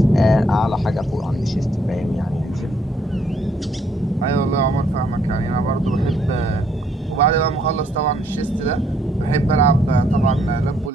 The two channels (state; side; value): normal; both; correlation 0.69